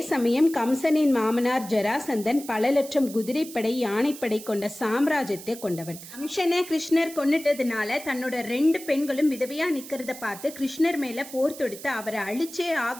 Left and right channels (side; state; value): right; noise; hiss, 14 dB below the sound